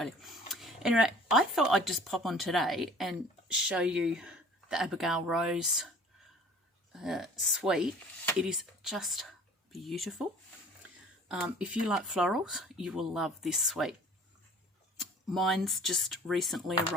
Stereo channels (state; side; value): normal; both; correlation 0.48